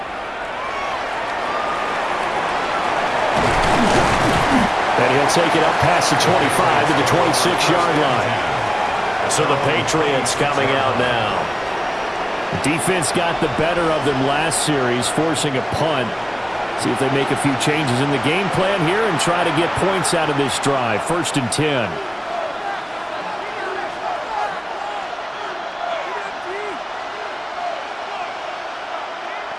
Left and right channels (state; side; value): identical; both; correlation 1.00